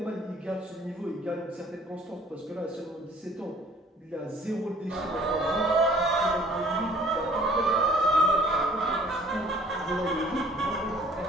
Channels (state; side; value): normal; both; correlation 0.55